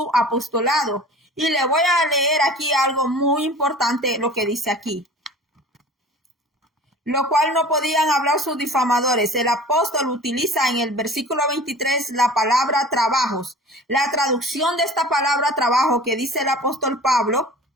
apostolado. Y le voy a leer aquí algo muy importante, lo que dice aquí. Lo cual no podían hablar sus difamadores. El apóstol utiliza en el versículo 23 la palabra trabajos. La traducción de esta palabra trabajo que dice el apóstol Pablo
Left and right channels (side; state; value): both; normal; correlation 0.42